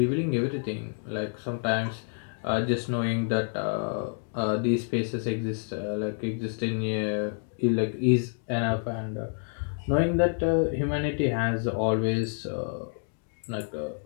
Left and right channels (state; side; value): silent; right; 59 dB below the other